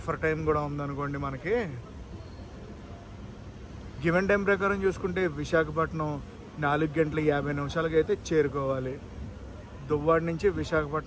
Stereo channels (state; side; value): identical; both; correlation 1.00